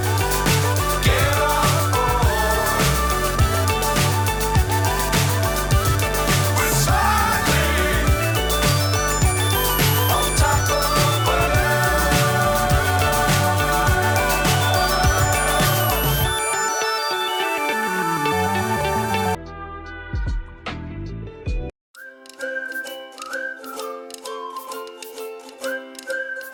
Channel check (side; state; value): both; identical; correlation 1.00